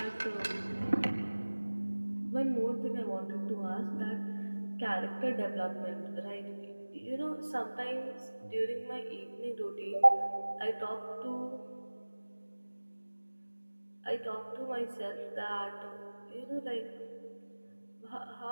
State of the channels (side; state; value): both; inverted; correlation -1.00